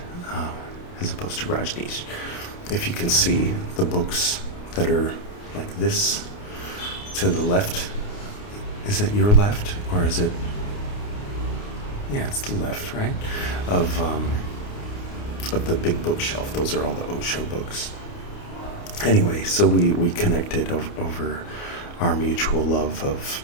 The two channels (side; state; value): right; late; 29 ms